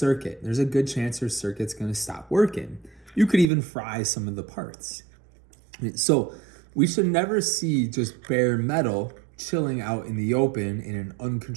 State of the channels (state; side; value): drops out; left; at 3.5 s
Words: There's a good chance your circuit's going to stop working. You could even fry some of the parts. So we should never see just bare metal chilling out in the open in an